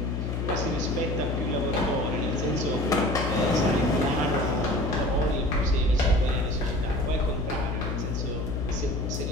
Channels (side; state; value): left; noise; hum, 2 dB below the sound